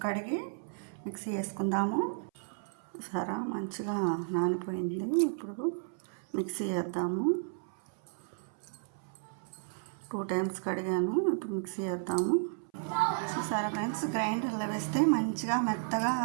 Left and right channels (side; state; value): left; silent; 56 dB below the other